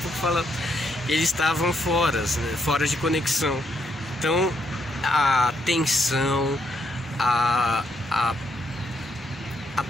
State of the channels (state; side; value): normal; both; correlation 0.76